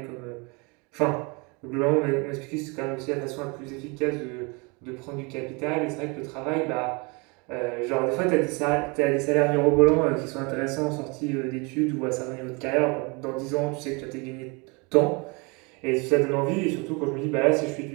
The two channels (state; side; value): quieter; left; 29.5 dB